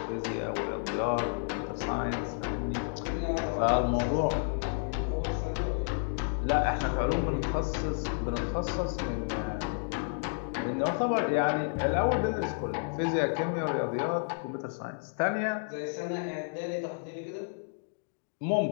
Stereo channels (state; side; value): silent; right; digital silence